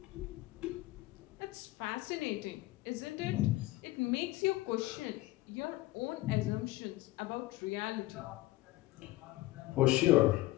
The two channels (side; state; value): right; quieter; 18.1 dB